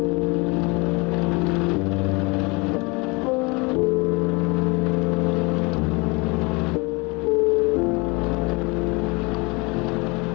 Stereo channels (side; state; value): right; quieter; 27.5 dB